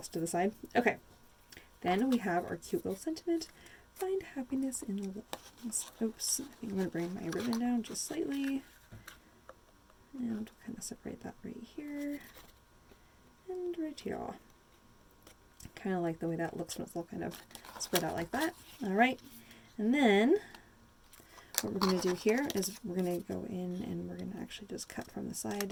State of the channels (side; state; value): both; identical; correlation 1.00